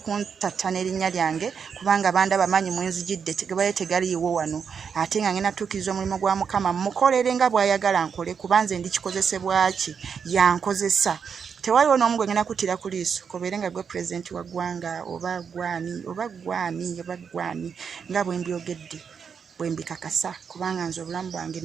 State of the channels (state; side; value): quieter; left; 6.6 dB